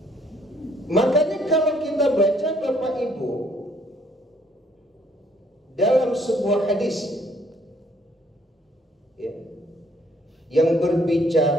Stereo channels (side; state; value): both; normal; correlation 0.64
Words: Makanya kalau kita baca Bapak Ibu dalam sebuah hadis ya, yang